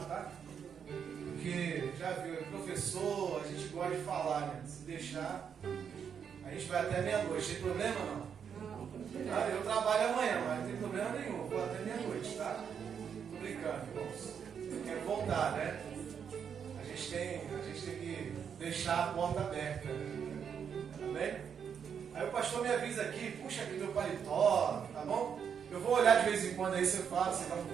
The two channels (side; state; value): left; quieter; 7.4 dB